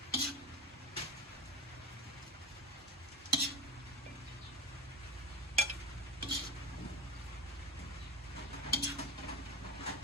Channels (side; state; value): both; normal; correlation 0.24